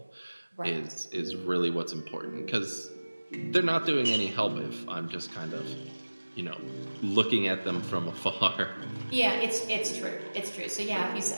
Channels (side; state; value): both; inverted; correlation -1.00